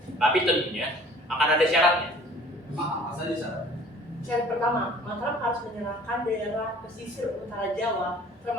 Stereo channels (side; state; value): both; normal; correlation 0.51